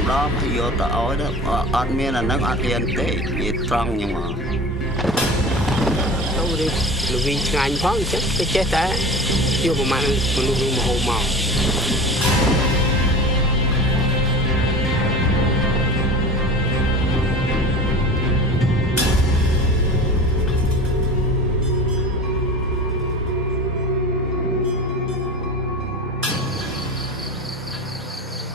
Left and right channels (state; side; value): normal; both; correlation 0.35